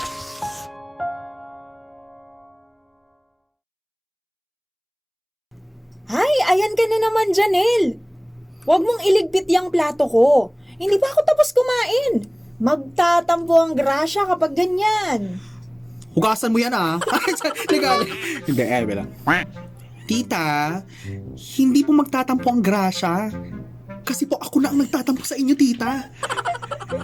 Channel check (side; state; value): both; identical; correlation 1.00